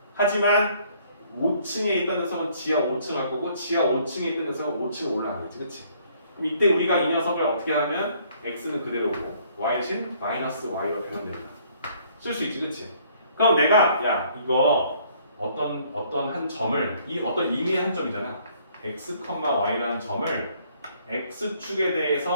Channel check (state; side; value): inverted; both; correlation -0.62